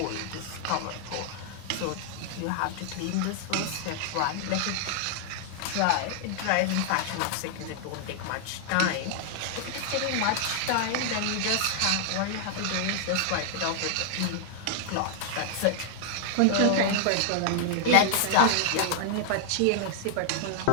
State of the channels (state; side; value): different; both; correlation 0.00